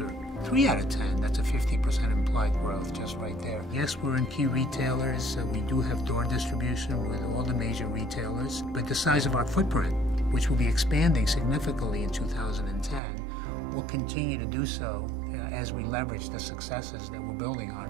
3 out of 10. That's a 50% implied growth just right there. Yes, we're in key retailers. We do have door distribution with all the major retailers, but the size of our footprint, which will be expanding significantly in 2010, will continue to do so as we leverage the successes that we're building on.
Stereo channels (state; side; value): drops out; left; at 13.0 s